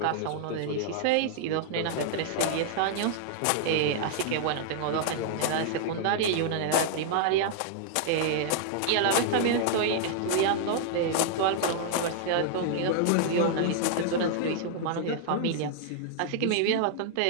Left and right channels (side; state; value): both; different; correlation -0.01